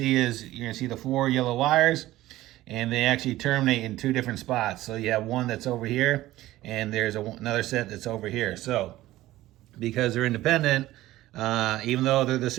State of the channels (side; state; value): left; quieter; 16.1 dB